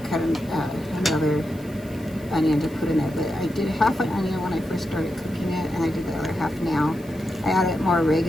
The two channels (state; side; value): noise; left; hiss, 24 dB below the sound